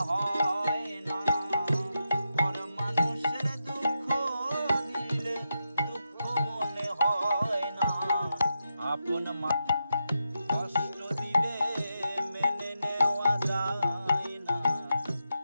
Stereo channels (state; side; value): inverted; both; correlation -0.86